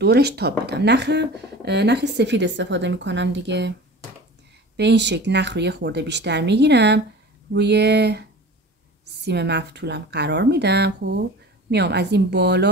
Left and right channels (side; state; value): both; normal; correlation 0.37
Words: تاب بدم. نخ سفید استفاده میکنم دیگه. به این شکل نخ رو یه خورده بیشتر میگیرم، روی سیم مفتولم قرار میدم. خب میام از این